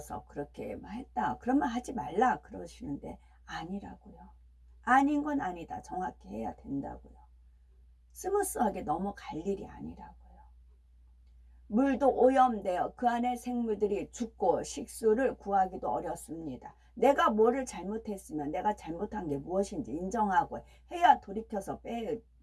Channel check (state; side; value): identical; both; correlation 1.00